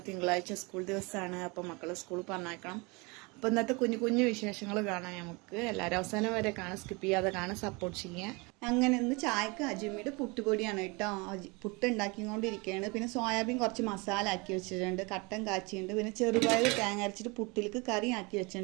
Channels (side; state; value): left; quieter; 27.5 dB